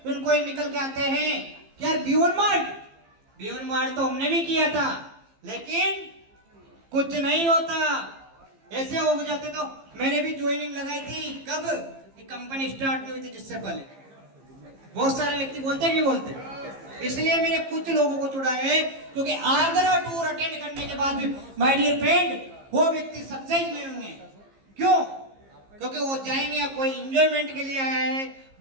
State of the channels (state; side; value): late; left; 15 ms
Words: निकल के आते हैं कि यार बियॉन्ड मार्ट तो हमने भी किया था, लेकिन कुछ नहीं होता। ऐसे हो जाते तो मैंने भी ज्वाइनिंग लगाई थी। कब? कि कंपनी स्टार्ट नहीं हुई थी, जिससे पहले। बहुत सारे व्यक्ति बोलते हैं, नहीं बोलते? इसलिए मैंने कुछ लोगों को चुना है, क्योंकि आगरा टूर अटेंड करने के बाद भी माय डियर फ्रेंड वो व्यक्ति सक्सेस नहीं होंगे। क्यों? क्योंकि वो जाएंगे कोई एंजॉयमेंट के लिए आया है,